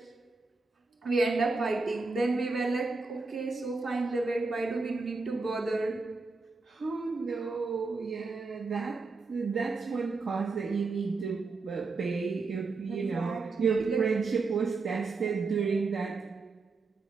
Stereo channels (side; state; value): left; quieter; 3.9 dB